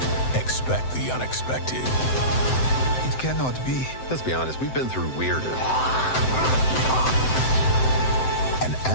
expect the unexpected. It cannot be. Let's be honest, we've been through weirder. And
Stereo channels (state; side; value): late; right; 7.8 ms